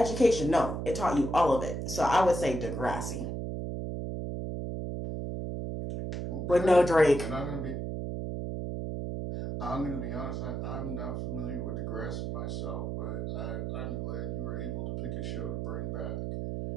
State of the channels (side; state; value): right; noise; hum, 3 dB below the sound